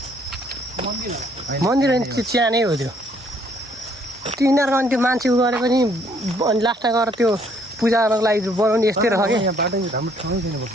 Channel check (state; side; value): normal; both; correlation 0.65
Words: मन्दिर होइन त्यो च्यानै हो त्यो यिनीहरूको अनि त्यो मान्छे उ गरे पनि अनि लास्टमा गएर त्यो पूजा गर्नको लागि बनाउने यस्तै रह कि